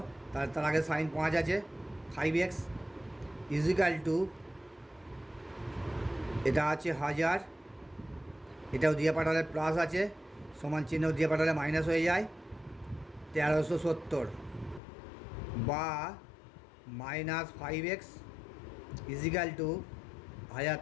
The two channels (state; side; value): drops out; right; at 14.8 s